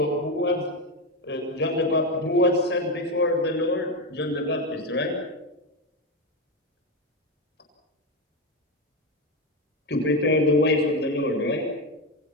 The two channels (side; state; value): both; normal; correlation 0.11